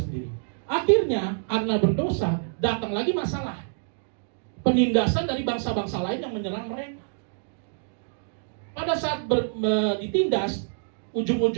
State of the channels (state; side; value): silent; left; digital silence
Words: Akhirnya, karena berdosa, datang lagi masalah. Penindasan dari bangsa-bangsa lain yang menyerang mereka. Pada saat ditindas,